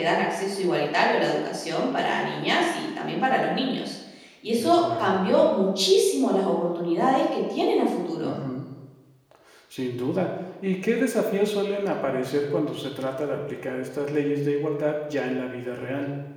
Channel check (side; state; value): both; identical; correlation 1.00